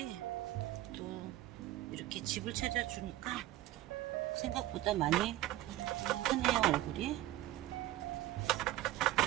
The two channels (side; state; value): left; quieter; 15.2 dB